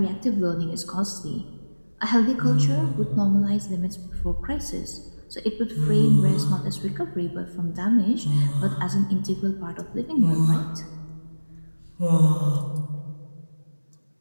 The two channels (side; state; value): both; inverted; correlation -1.00